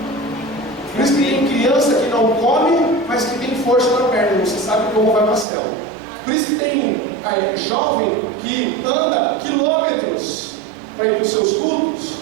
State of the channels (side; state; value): left; drops out; at 5.5 s